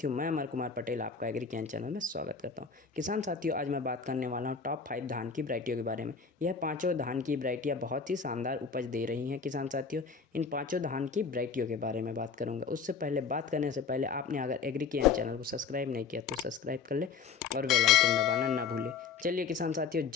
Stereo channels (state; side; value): quieter; right; 5.8 dB